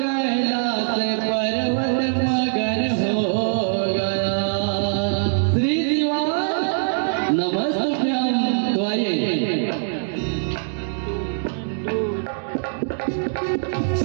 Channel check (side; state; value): left; silent; digital silence